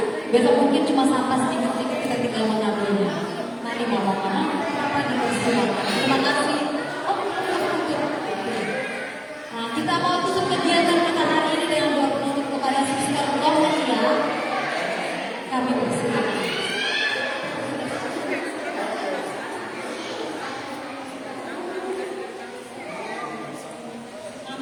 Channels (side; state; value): both; identical; correlation 1.00